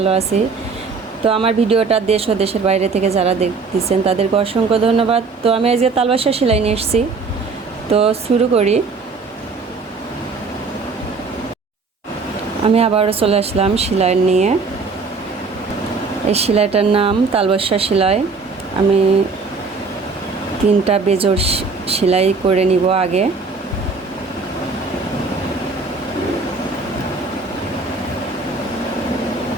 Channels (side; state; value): left; quieter; 4.4 dB